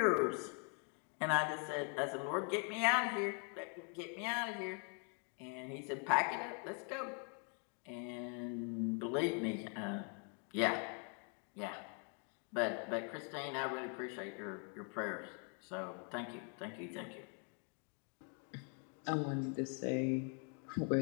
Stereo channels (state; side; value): quieter; right; 39.7 dB